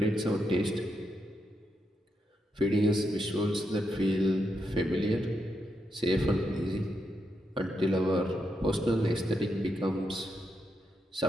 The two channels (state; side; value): normal; both; correlation 0.83